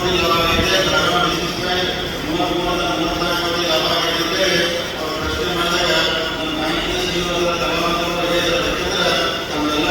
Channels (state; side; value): identical; both; correlation 1.00